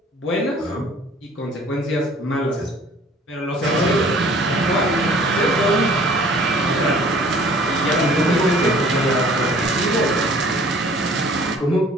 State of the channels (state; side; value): normal; both; correlation 0.52